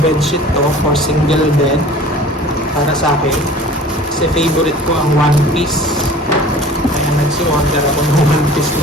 to for single bed para sa akin. Kasi favorite ko ang one piece. Kaya nagsi-order ako ng one piece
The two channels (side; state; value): both; normal; correlation 0.44